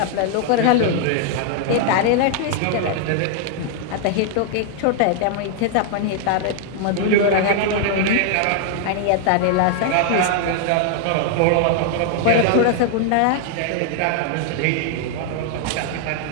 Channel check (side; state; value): both; different; correlation 0.00